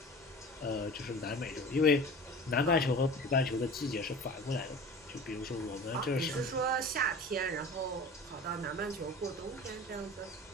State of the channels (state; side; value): normal; both; correlation 0.39